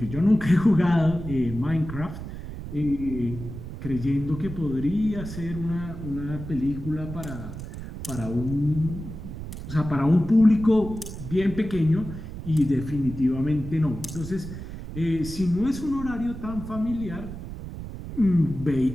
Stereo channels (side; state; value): right; noise; rumble, 9 dB below the sound